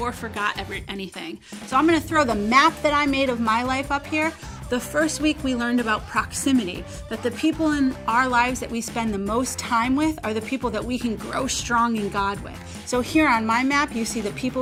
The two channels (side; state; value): both; identical; correlation 1.00